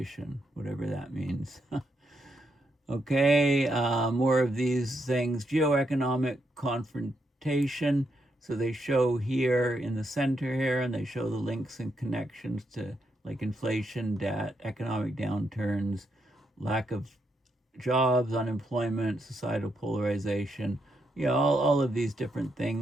whatever that means. Okay, more of these things. Geoeconomic confrontation. So they show here in the center here, and they show the links and connections to like inflation, debt, economic downturns, lack of jobs, unemployment, societal polarization, all of these different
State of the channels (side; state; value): both; normal; correlation 0.80